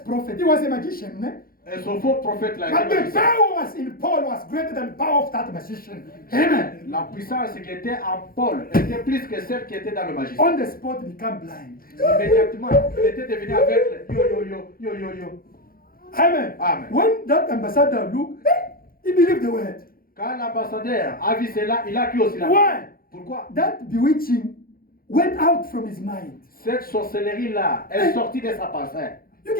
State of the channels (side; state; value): right; late; 0.42 ms